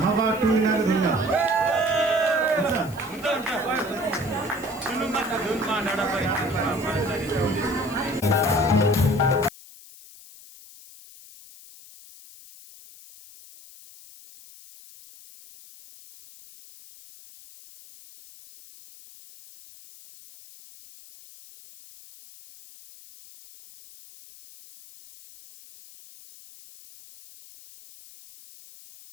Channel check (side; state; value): left; noise; hiss, 20 dB below the sound